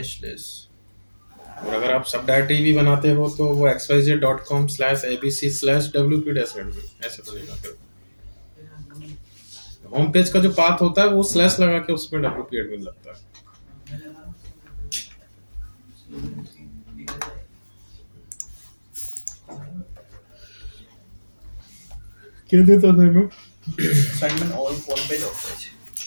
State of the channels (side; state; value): both; inverted; correlation -1.00